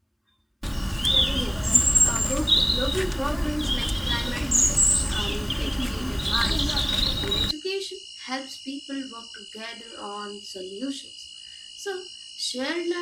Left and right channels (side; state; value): both; identical; correlation 1.00